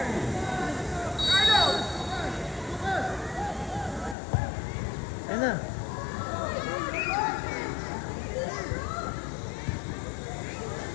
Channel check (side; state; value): right; drops out; at 4.2 s